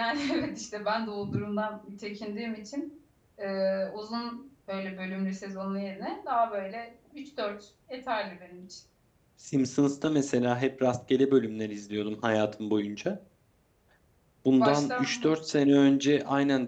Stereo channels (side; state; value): both; identical; correlation 1.00